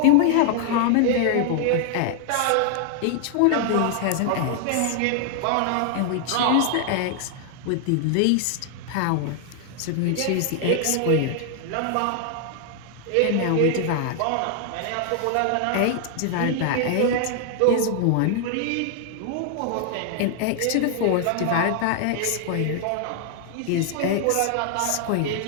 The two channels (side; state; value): both; different; correlation 0.00